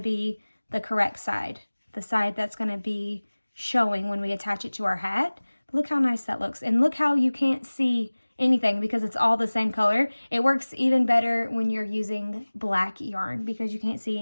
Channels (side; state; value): both; inverted; correlation -1.00